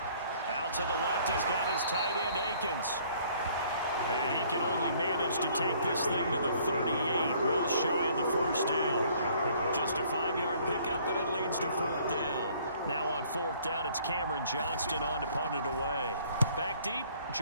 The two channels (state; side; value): inverted; both; correlation -0.59